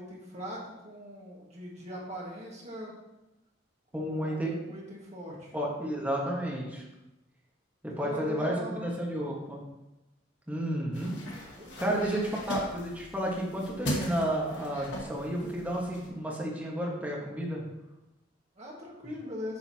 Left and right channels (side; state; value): both; normal; correlation 0.59